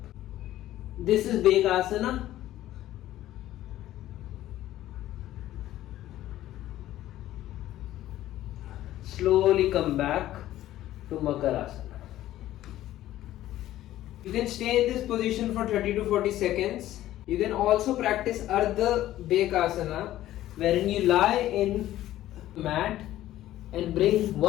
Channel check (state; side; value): quieter; right; 14.0 dB